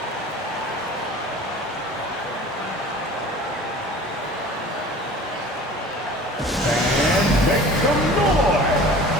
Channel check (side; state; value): both; normal; correlation 0.42